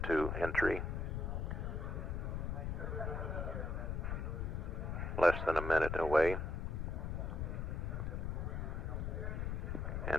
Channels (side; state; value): left; noise; rumble, 1 dB below the sound